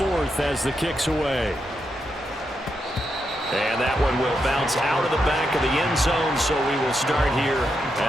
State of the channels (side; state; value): both; normal; correlation 0.83